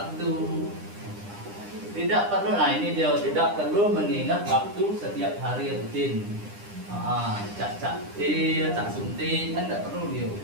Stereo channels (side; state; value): left; late; 9.9 ms